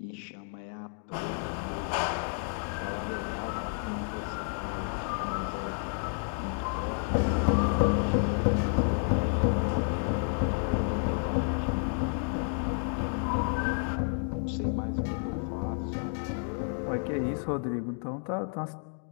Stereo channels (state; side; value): silent; right; 55 dB below the other